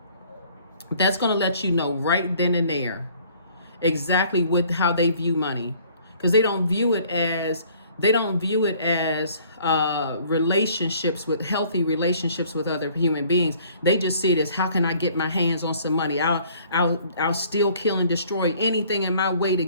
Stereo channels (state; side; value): inverted; both; correlation -0.57